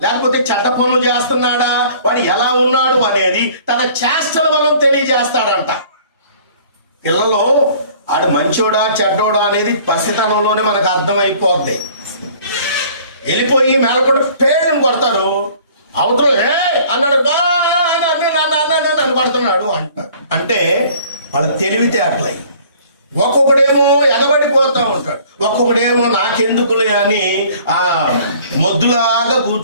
లేకపోతే చెడ్డ పనులు చేస్తున్నాడా, వాడు ఎలా ఉన్నాడు అనేది తన చేష్టల వలన తెలియజేస్తాడంట. పిల్లలు ఆడు మంచోడా చెడ్డోడా అనేది పసితనంలోనే మనకు అర్థమైపోద్ది. వెళ్ళిపోయి మేలకొండ పేరుని కొడతారు, అవతల అన్నాడు నన్ను కొడుతున్నాడు అంటారు. అంటే వాళ్ళ తెలివితే అట్లయి. ఒక్కొక్కడేమో ఎగబడిపోతా ఉంటాడు, ఒక్కొక్కడేమో నాకెందుకులే అని ఆ మొద్దులాగా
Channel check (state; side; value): inverted; both; correlation -0.53